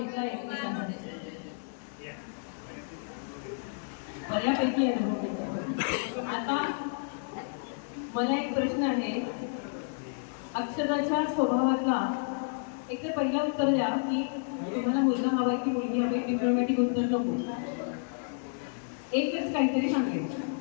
एकमेकांमध्ये, बऱ्यापैकी अनुभव घेतला. आता मला एक प्रश्न आहे. अक्षराच्या स्वभावातला एक तर पहिला उत्तर द्या की तुम्हाला मुलगा हवाय की मुलगी हवी. डिप्लोमॅटिक उत्तर नको, एकच काहीतरी सांगेल.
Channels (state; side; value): silent; right; 57 dB below the other